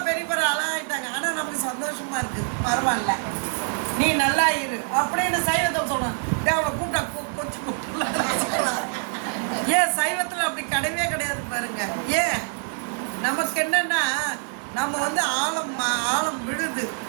பெரிய பெரிய ஆளாகிட்டாங்க. ஆனால் நமக்கு சந்தோஷமாக இருக்குது, பரவாயில்ல நீ நல்லா இரு அப்படின்னு சைவத்தை சொன்னான். அவனை கூப்பிட்டா கொஞ்சம் கூப்பிட்டு. ஏன் சைவத்தில் அப்படி கிடையவே கிடையாது பாருங்க. ஏன் நமக்கு என்னென்னா, நம்ம ஆழம் விழுது.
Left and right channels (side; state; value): left; silent; 56 dB below the other